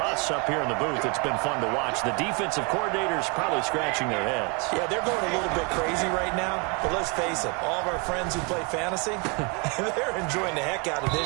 us up here in the booth, it's been fun to watch. The defensive coordinators probably scratching their heads. Yeah, they're going a little bit crazy right now. But let's face it, all of our friends who play fantasy, they're enjoying the heck out of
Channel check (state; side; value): quieter; left; 31.6 dB